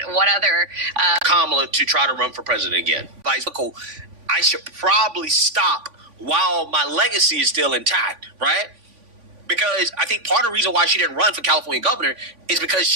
what other Kamala to try to run for president again. I should probably stop while my legacy is still intact, right? Because I think part of the reason why she didn't run for California governor is because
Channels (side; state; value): left; late; 3.5 ms